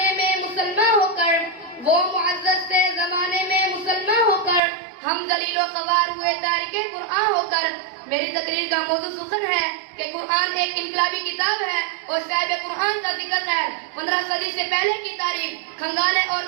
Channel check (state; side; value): drops out; left; at 4.6 s